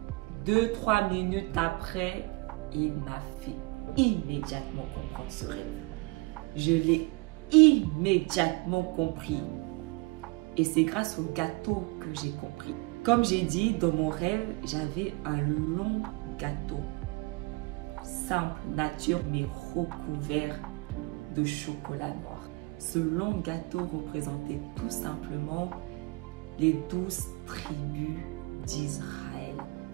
2-3 minutes après, il m'a fait immédiatement comprendre ce rêve. Je l'ai immédiatement compris. Et c'est grâce au gâteau que j'ai compris. Comme j'ai dit, dans mon rêve, j'avais un long gâteau. Simple, nature, mais recouvert de chocolat noir. Ce long gâteau représentait tout simplement les 12 tribus d'Israël,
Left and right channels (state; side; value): quieter; left; 25.5 dB